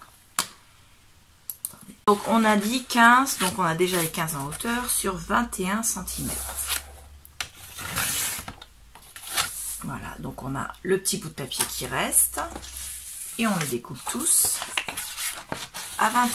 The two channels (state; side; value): identical; both; correlation 1.00